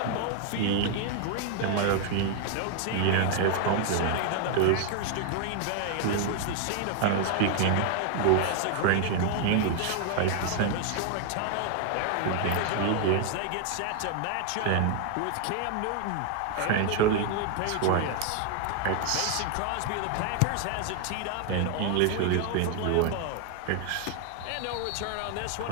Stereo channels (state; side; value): different; both; correlation 0.00